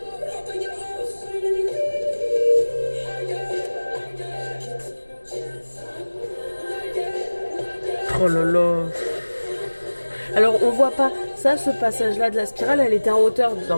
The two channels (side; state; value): both; inverted; correlation -1.00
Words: Oh là là. Alors on voit pas ça, ce passage là de la spirale, elle était en hauteur dans